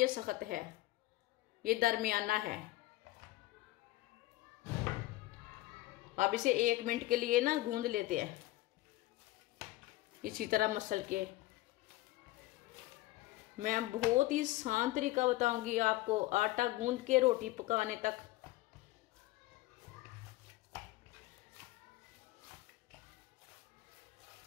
सख्त है, ये दरमियाना है। अब इसे 1 मिनट के लिए ना गूंद लेते हैं इसी तरह मसल के। मैं बहुत ही आसान तरीका बताऊंगी आपको आटा गूंद के रोटी पकाने तक।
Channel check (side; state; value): right; quieter; 17.9 dB